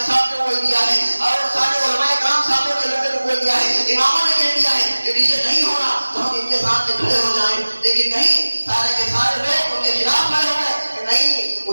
صاحب نے بول دیا ہے، اور سارے علماء کرام صاحبوں کے لوگوں نے بول دیا ہے، اماموں نے کہہ دیا ہے کہ ڈیجے نہیں ہونا، تو ہم ان کے سامنے کھڑے ہو جائیں. لیکن نہیں، سارے کے سارے لوگ ان کے خلاف کھڑے ہو گئے کہ نہیں،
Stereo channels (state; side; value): inverted; both; correlation -1.00